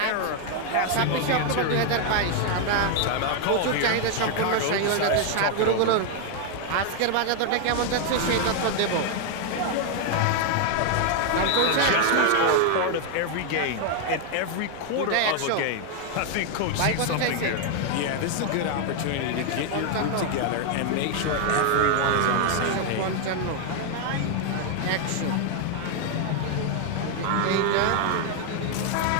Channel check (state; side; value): different; both; correlation 0.00